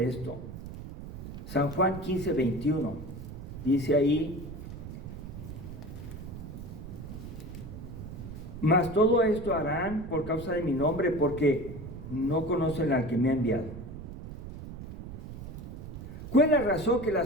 San Juan 15:21. Dice ahí: mas todo esto harán por causa de mi nombre, porque no conocen al que me ha enviado. ¿Cuál es la razón que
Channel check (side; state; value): right; noise; rumble, 10 dB below the sound